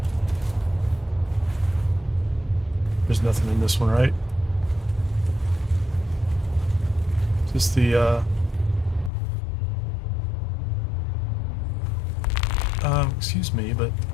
There's nothing in this one, right? Just the, excuse me, but...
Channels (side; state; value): right; drops out; at 9.1 s